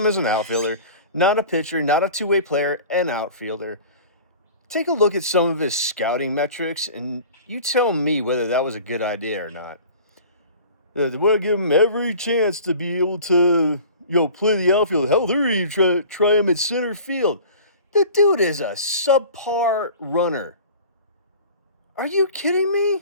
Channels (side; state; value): both; inverted; correlation -0.43